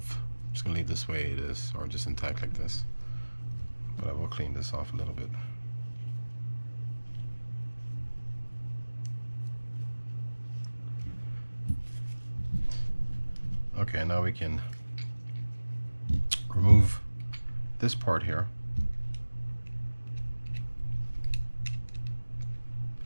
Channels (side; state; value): both; inverted; correlation -1.00